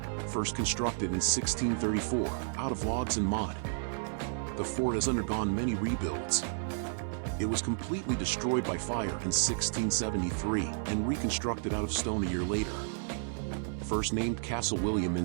First constructed in 1634, out of logs and mud, the fort has undergone many rebuilds. It was completely destroyed by fire in 1673 and reconstructed out of stone a year later. First named Castle William in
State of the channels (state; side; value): silent; left; 56 dB below the other